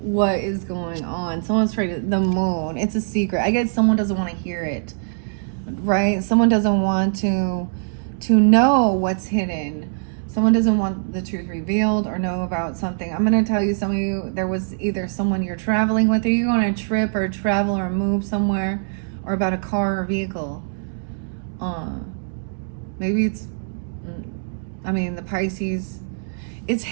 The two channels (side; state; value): left; silent; digital silence